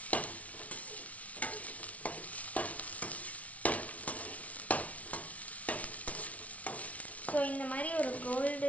ஸோ இந்த மாதிரி ஒரு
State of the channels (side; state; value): right; late; 0.067 ms